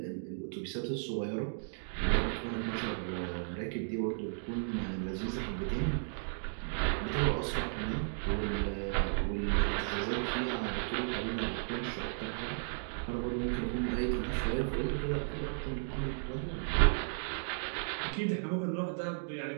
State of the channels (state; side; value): silent; left; digital silence